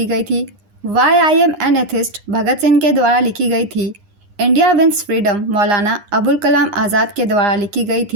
गई थी। Why I am an atheist Bhagat Singh के द्वारा लिखी गई थी। India wins freedom Maulana Abul Kalam Azad के द्वारा लिखी गई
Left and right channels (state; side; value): late; left; 9.8 ms